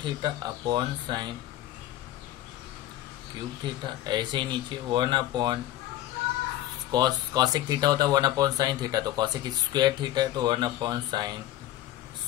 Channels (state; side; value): quieter; right; 14.1 dB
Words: theta upon sine cube theta. ऐसे ही नीचे 1 अपॉन कॉसेक थीटा होता है 1 अपॉन साइन थीटा, तो कॉसेक स्क्वायर थीटा है तो 1 अपॉन साइन